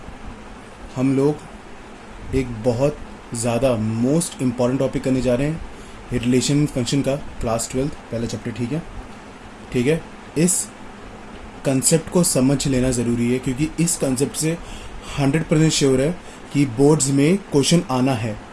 हम लोग एक बहुत ज़्यादा मोस्ट इम्पॉर्टेंट टॉपिक करने जा रहे हैं, रिलेशन फंक्शन का, क्लास 12 पहला चैप्टर। ठीक है? ठीक है। इस कंसेप्ट को समझ लेना ज़रूरी है क्योंकि इस कंसेप्ट से 100% श्योर है कि बोर्ड्स में क्वेश्चन आना है,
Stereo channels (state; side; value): identical; both; correlation 1.00